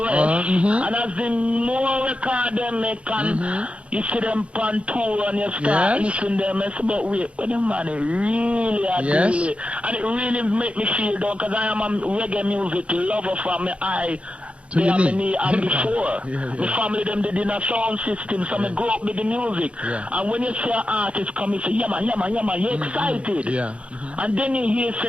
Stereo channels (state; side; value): late; left; 0.061 ms